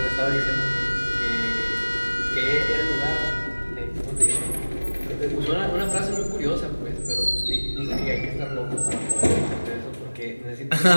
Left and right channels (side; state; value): both; inverted; correlation -1.00